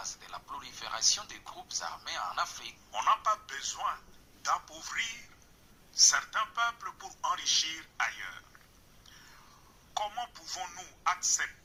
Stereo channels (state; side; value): identical; both; correlation 1.00